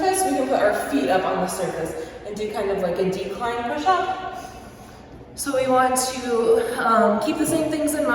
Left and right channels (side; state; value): both; identical; correlation 1.00